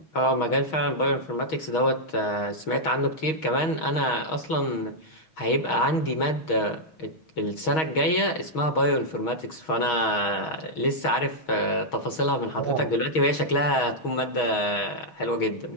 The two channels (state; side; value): late; right; 6.3 ms